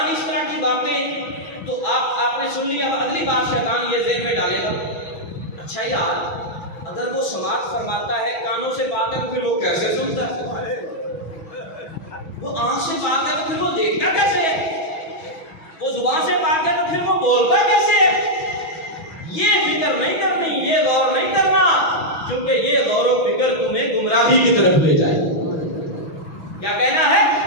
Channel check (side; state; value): right; late; 6.1 ms